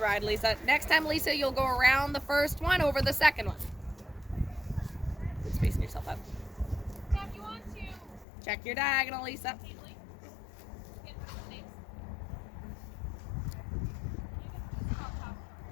Lisa. Next time, Lisa, you'll go around the first one over the second one. Keep spacing yourself out. Now, if you want to Check your diagonal, Lisa. safely, you can put the names.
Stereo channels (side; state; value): right; drops out; at 8.2 s